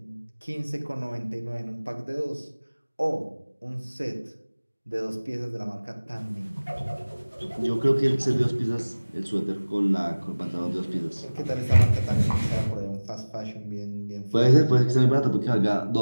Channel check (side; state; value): both; inverted; correlation -1.00